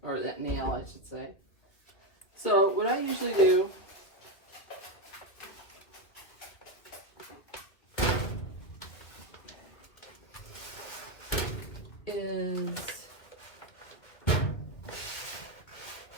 Or that nail, I should say. So what I usually do is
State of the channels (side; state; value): right; late; 2.4 ms